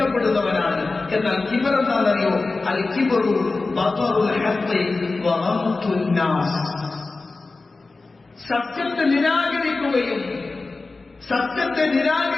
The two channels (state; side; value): quieter; right; 3.6 dB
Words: എന്നാൽ കിബർ എന്താണെന്നറിയോ? അൽ കിബ്റു ബതറുൽ ഹഖ് വ ഗംതുൻ നാസ്, സത്യത്തെ നിരാകരിക്കുകയും സത്യത്തെ